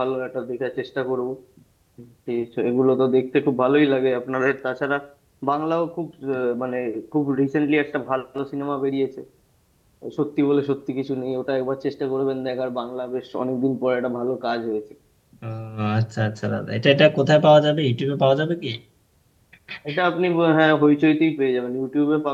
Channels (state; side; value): identical; both; correlation 1.00